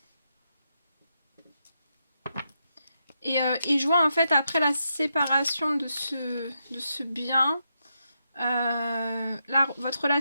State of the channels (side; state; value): both; inverted; correlation -0.83